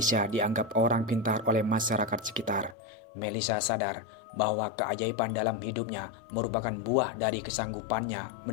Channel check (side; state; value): right; drops out; at 2.8 s